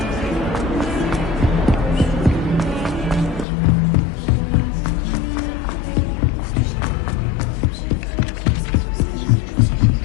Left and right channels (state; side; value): drops out; right; at 3.5 s